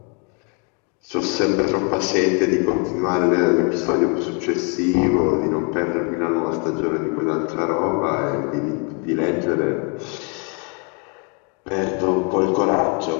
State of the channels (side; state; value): right; quieter; 36.6 dB